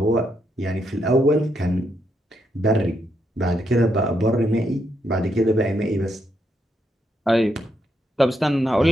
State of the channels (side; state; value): both; normal; correlation 0.78